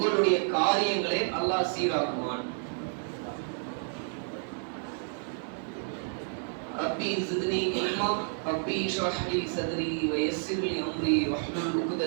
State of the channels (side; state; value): left; silent; 58 dB below the other